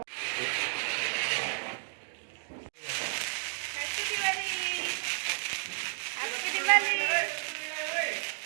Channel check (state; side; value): silent; left; digital silence